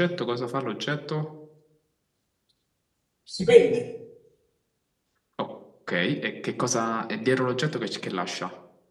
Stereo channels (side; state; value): both; identical; correlation 1.00